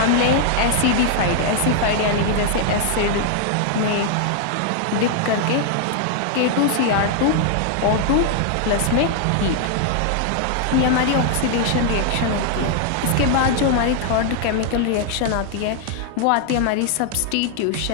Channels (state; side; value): different; both; correlation 0.00